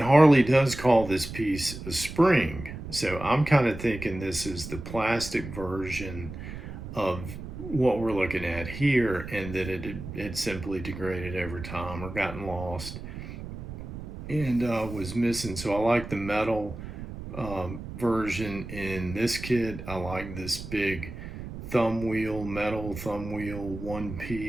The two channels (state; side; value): noise; right; rumble, 10 dB below the sound